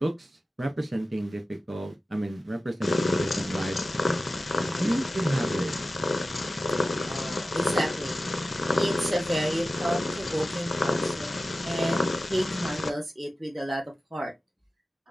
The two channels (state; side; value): normal; both; correlation 0.95